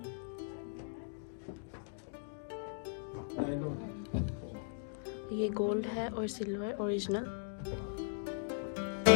Nylon. ये गोल्ड है और सिल्वर ओरिजिनल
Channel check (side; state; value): right; silent; digital silence